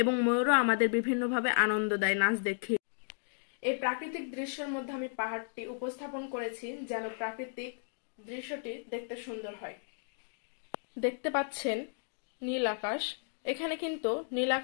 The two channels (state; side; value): silent; right; digital silence